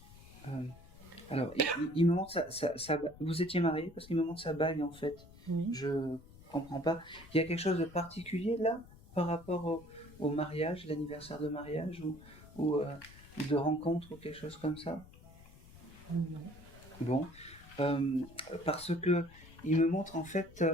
alors, il me montre vous étiez mariés parce qu'il me montre sa bague, en fait. Oui. Je comprends pas. Il y a quelque chose de particulier, là, par rapport au mariage, l'anniversaire de mariage, ou de rencontre, ou quelque chose comme ça? Non. Bon, parce que il me montre en fait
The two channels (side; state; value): left; noise; rumble, 20 dB below the sound